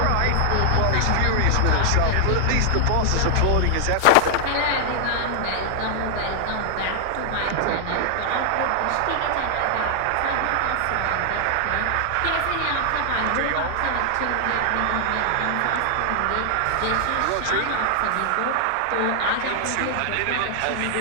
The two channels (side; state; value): both; different; correlation 0.00